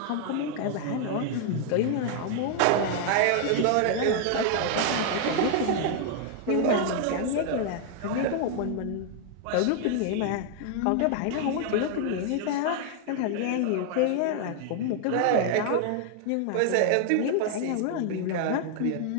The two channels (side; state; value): both; different; correlation 0.00